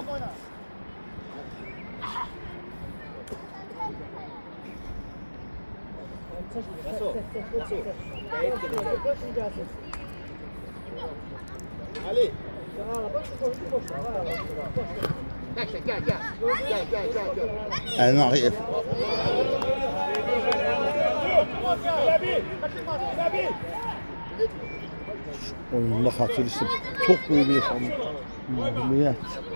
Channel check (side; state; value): both; inverted; correlation -1.00